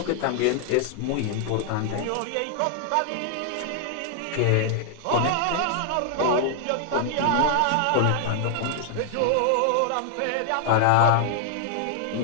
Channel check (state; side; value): different; both; correlation 0.00